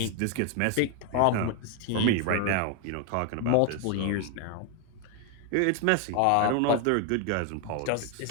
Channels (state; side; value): different; both; correlation 0.01